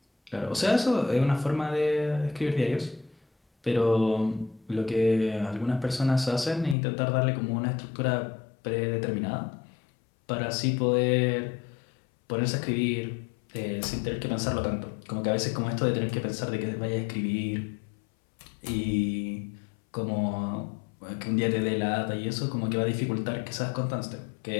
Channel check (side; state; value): right; drops out; at 6.8 s